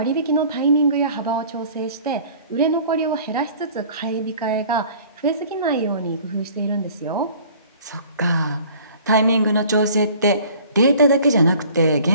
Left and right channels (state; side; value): inverted; both; correlation -0.50